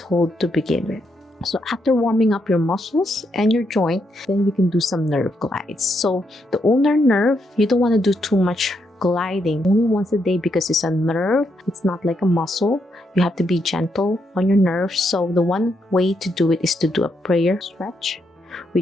to begin with. So after warming up your muscles and your joint, then you can do some nerve glides. So the ulnar nerve, you don't want to do too much gliding, only once a day, because it's a nerve. It's not like a muscle. You have to be gentle on your nerves. So the one way to do it is to do a prayer stretch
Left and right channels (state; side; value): normal; both; correlation 0.79